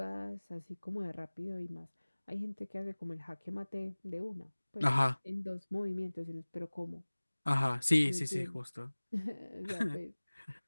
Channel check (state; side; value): inverted; both; correlation -1.00